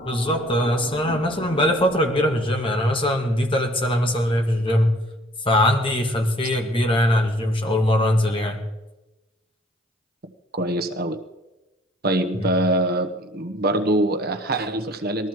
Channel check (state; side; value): normal; both; correlation 0.56